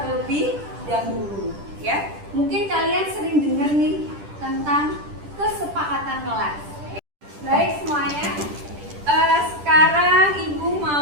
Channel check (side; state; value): left; late; 10 ms